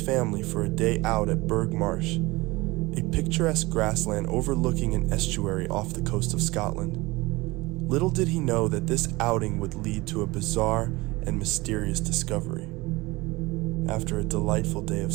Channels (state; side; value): quieter; left; 21.9 dB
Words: for a day out at Burgh Marsh, a picturesque grassland overlooking an estuary off the coast of Scotland. Little did he know that this outing would lead to a bizarre and mysterious discovery. After a delightful day of